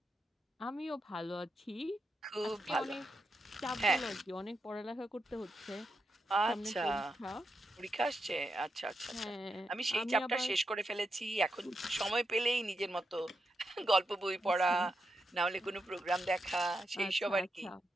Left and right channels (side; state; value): both; normal; correlation 0.85